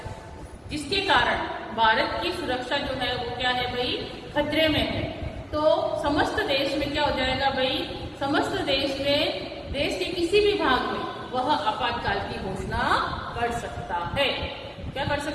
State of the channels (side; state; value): both; identical; correlation 1.00